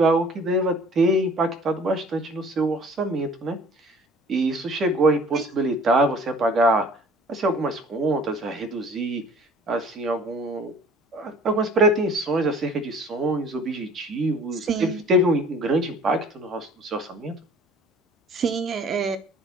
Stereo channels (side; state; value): both; normal; correlation 0.50